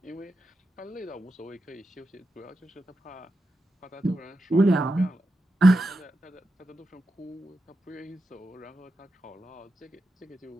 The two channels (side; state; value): both; normal; correlation 0.89